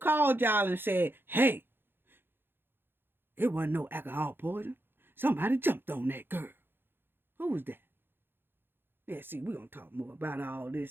called y'all and said, hey, it wasn't no alcohol poison. Somebody jumped on that girl. Who was that? Yeah, see, we're going to talk more about all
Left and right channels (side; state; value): left; late; 0.10 ms